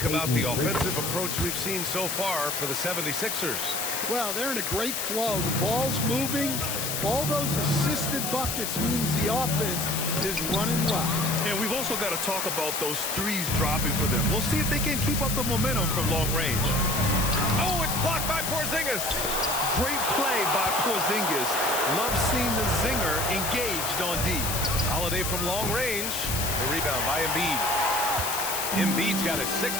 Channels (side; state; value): left; noise; hiss, 2 dB below the sound